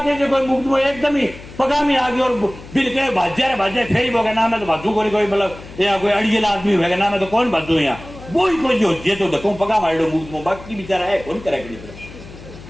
जो कोई मुकदमा एकदम ही पगा में आ गया और बिल के भाज्या फेरी होगा नाम है तो भाजू कोई मतलब या कोई अड़ियल आदमी होगा नाम है तो कौन भाजू यहाँ वो ही कोई जो ये तो धक्को पगा मार लो मुकदमा, बाकी बेचारा है कौन करेगा।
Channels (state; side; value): noise; left; hum, 17 dB below the sound